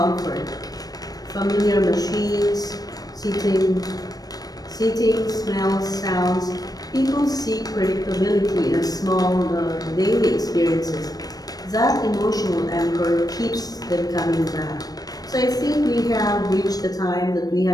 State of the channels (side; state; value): right; late; 0.18 ms